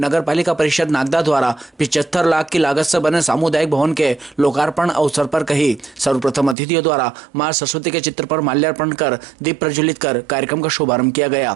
पालिका परिषद नागदा द्वारा 75 लाख की लागत से बने सामुदायिक भवन के लोकार्पण अवसर पर कही। सर्वप्रथम अतिथियों द्वारा मां सरस्वती के चित्र पर माल्यार्पण कर दीप प्रज्वलित कर कार्यक्रम का शुभारंभ किया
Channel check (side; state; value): left; drops out; at 6.6 s